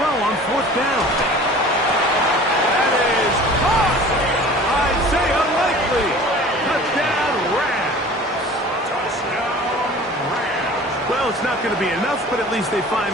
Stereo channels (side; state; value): both; normal; correlation 0.43